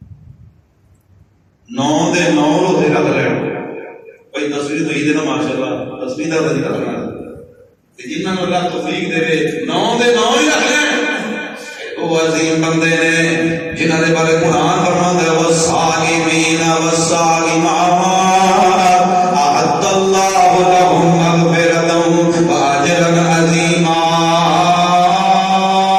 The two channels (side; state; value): both; identical; correlation 1.00